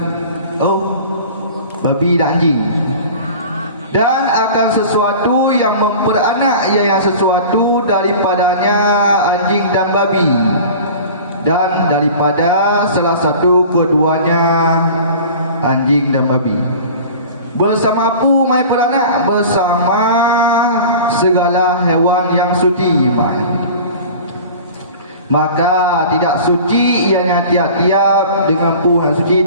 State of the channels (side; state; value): both; inverted; correlation -0.40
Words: Oh, babi dan anjing. Dan akan sesuatu yang memperanak, iaitu sesuatu daripadanya anjing dan babi, dan daripada salah satu keduanya anjing dan babi. Bersama pu mai peranak, bersama segala hewan yang suci mai. Maka tidak suci ianya tiap-tiap dengan pu yang suci